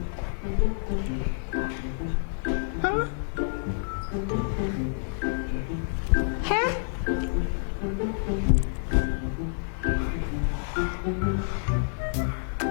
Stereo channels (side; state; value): right; silent; digital silence